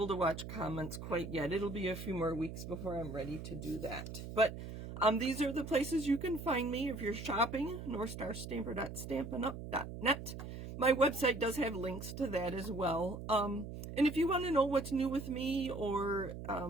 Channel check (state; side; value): noise; right; hum, 9 dB below the sound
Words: to watch comments quite yet. It'll be a few more weeks before I'm ready to do that. But these are the places you can find me if you're shopping. northstarstamper.stampinup.net. My website does have links to that as well. And if you want to know what's new with me or